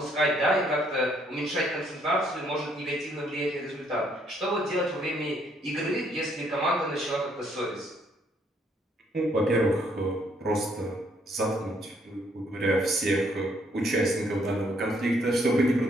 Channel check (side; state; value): both; normal; correlation 0.68